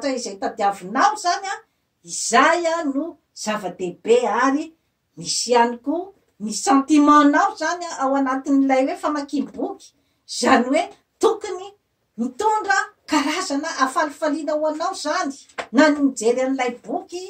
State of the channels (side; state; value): both; identical; correlation 1.00